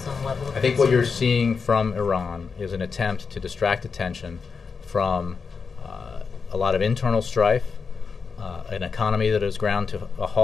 level of I think what you're seeing from Iran is an attempt to distract attention from a lot of internal strife, an economy that is ground to a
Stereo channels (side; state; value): right; quieter; 5.3 dB